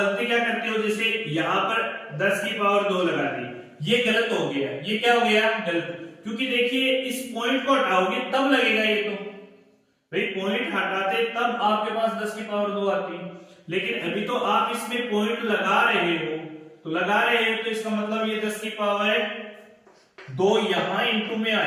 क्या करते हो, जैसे यहां पर 10 की पावर 2 लगा दी, ये गलत हो गया। ये क्या हो गया गलत, क्योंकि देखिए इस पॉइंट को हटाओगे तब लगेगा ये। तो भाई पॉइंट हटाते तब आपके पास 10 की पावर 2 आती, लेकिन अभी तो आप इसमें पॉइंट लगा रहे हो। तो लगा रहे हो तो इसका मतलब ये 10 की पावर 2 यहां इंटू में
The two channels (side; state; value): both; identical; correlation 1.00